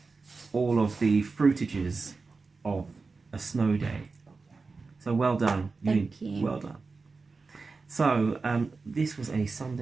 all of the fruitages of a snow day. So well done. Thank you. Well done. So this was a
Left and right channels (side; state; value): left; quieter; 4.2 dB